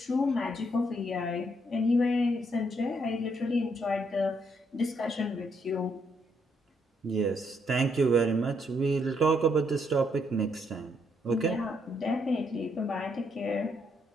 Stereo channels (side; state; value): both; normal; correlation 0.74